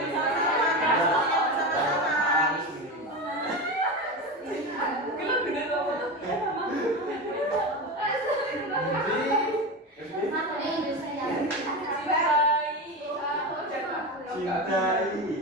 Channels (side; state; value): both; normal; correlation 0.21